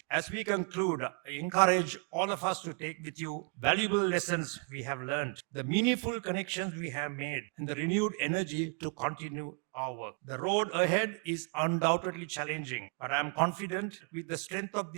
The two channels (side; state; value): left; quieter; 39.3 dB